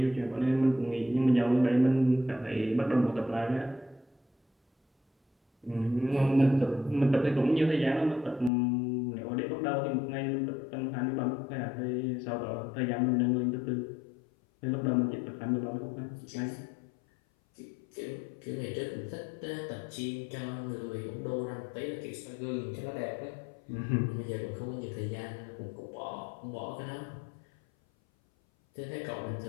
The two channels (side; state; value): right; drops out; at 8.5 s